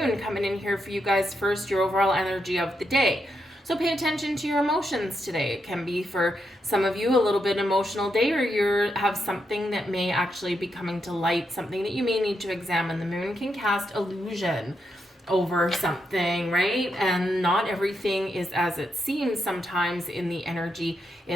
coming in here for you guys first, your overall energy of the day. So pay attention to your emotions today. It can be for some of you a little bit emotional day, or you have something that may actually be coming to light, something that you may need to examine. The moon can cast illusion over something, right? And not everything is as it seems sometimes in the energy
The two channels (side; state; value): both; normal; correlation 0.83